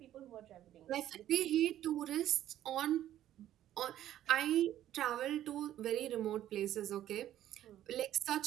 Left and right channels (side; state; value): left; quieter; 12.4 dB